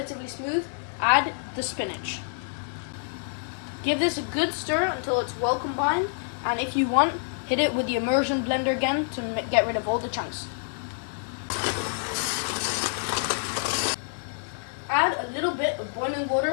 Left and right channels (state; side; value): silent; right; 60 dB below the other